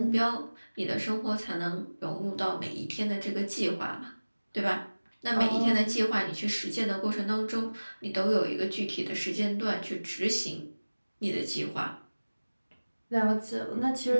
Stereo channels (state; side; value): inverted; both; correlation -1.00